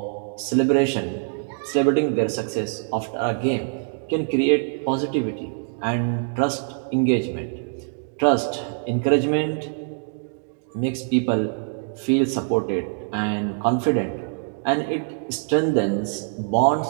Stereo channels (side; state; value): left; silent; digital silence